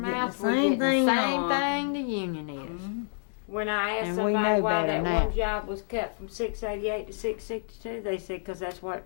getting the we're same getting the thing same on. thing the union is. Mhm. When I asked And we somebody know why better that now. one job was cut from 688 to 662, they said because that's what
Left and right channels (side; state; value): right; silent; digital silence